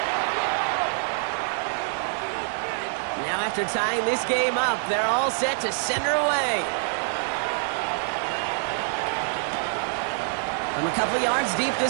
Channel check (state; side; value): silent; left; digital silence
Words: Now after tying this game up, they're all set to center away. From a couple of yards deep,